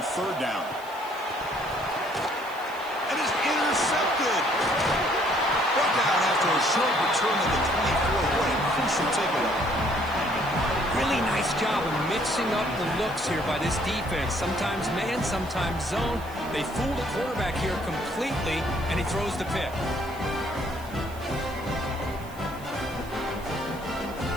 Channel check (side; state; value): right; noise; hiss, 21 dB below the sound